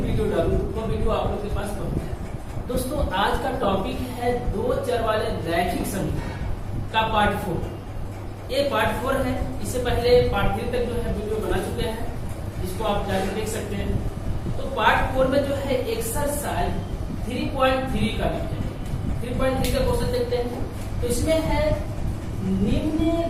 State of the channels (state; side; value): identical; both; correlation 1.00